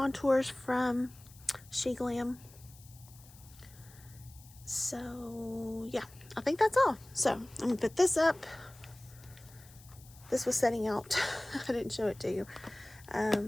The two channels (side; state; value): left; noise; hiss, 23 dB below the sound